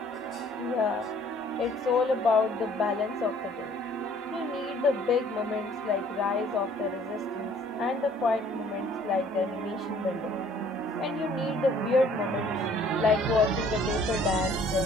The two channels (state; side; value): normal; both; correlation 0.57